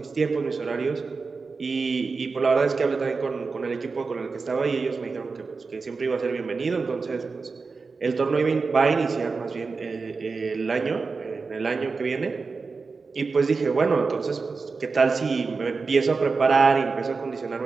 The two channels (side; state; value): left; quieter; 4.4 dB